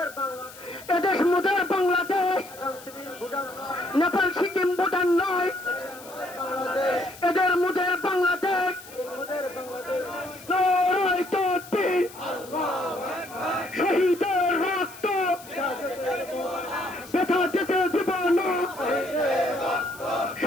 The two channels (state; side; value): noise; left; hiss, 18 dB below the sound